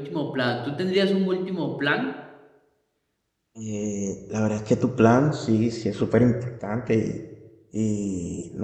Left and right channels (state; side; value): identical; both; correlation 1.00